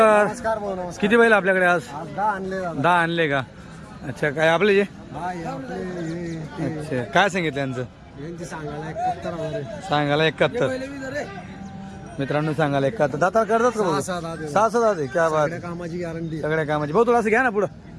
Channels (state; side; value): identical; both; correlation 1.00